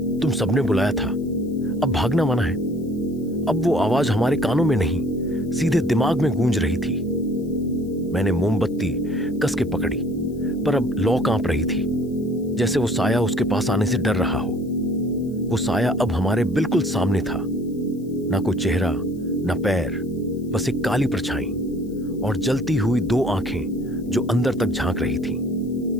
तुम सबने बुलाया था, अब भागना मना है। अब वो आवाज हमारे कानों में नहीं, सीधे दिमाग में गूंज रही थी। मैंने मोमबत्ती कस के पकड़ी, पर अब लौ कांप रही थी, जैसे वो साया उसके पास आने से डर रहा हो। वो साया अब हमारे बिल्कुल सामने था। ना कोई चेहरा, ना पैर, बस एक काली परछाई और जलती हुई 2 आंखें जो अंदर तक झांक रही थीं।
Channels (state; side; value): noise; left; hiss, 29 dB below the sound